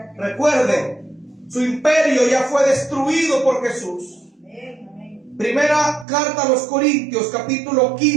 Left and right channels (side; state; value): left; drops out; at 6.1 s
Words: Recuerde, su imperio ya fue destruido por Jesús. Primera carta a los Corintios, capítulo